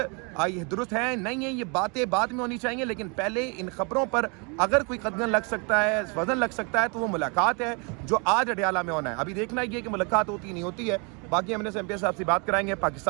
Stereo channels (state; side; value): quieter; left; 33.0 dB